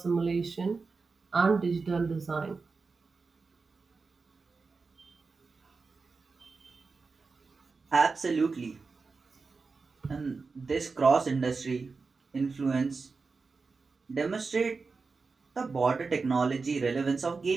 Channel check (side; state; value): left; quieter; 4.4 dB